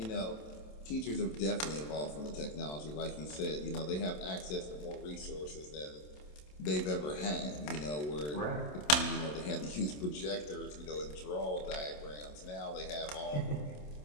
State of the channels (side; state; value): right; late; 27 ms